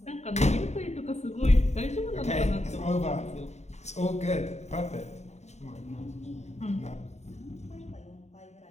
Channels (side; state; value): right; late; 0.32 ms